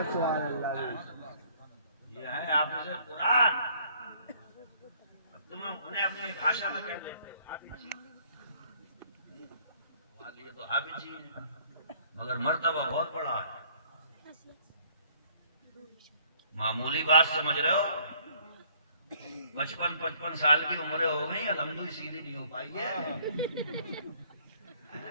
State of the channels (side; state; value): both; inverted; correlation -0.60